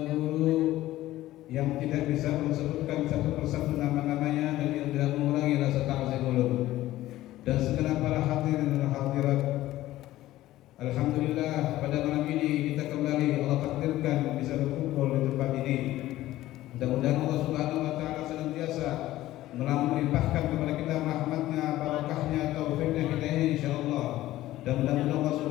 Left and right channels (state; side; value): quieter; right; 15.4 dB